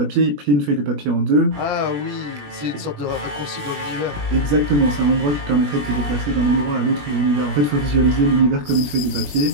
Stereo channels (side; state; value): left; late; 21 ms